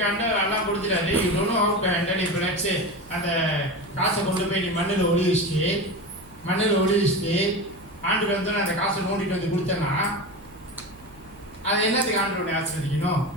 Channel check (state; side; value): noise; right; hum, 24 dB below the sound